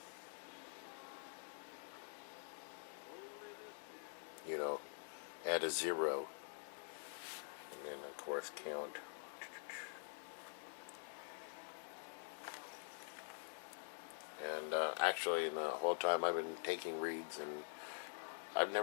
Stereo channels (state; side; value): silent; right; digital silence